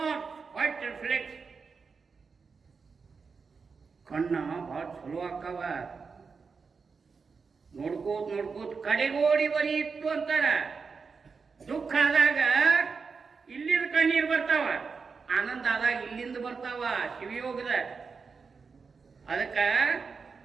white reflex. ಕಣ್ಣ ಭಾಳ ಚಲೋ ಆಕ್ಕವ, ನೋಡ್ಕೋತ ನೋಡ್ಕೋತ ಕಡೆಗೋಡಿ ಬರೀತ್ತು ಅಂತಾರ. ದುಃಖ ಆದಾಗ ಇಲ್ಲಿಂದ ಕಣ್ಣೀರು ಬರ್ತಾವ, ಆನಂದ ಆದಾಗ ಇಲ್ಲಿಂದ ಬರ್ತಾವ. ಶಿವಯೋಗದ ಅದಕ್ಕ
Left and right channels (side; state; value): left; quieter; 5.1 dB